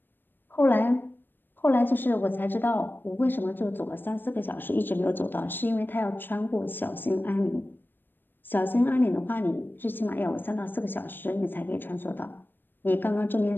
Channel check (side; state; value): right; late; 0.095 ms